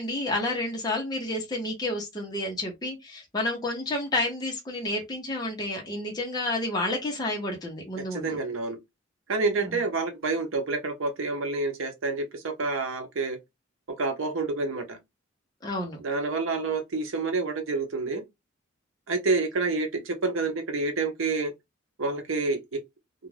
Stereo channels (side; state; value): both; normal; correlation 0.00